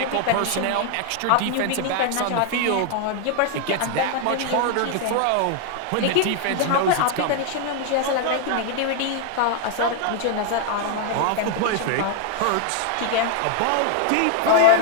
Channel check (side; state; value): both; different; correlation 0.00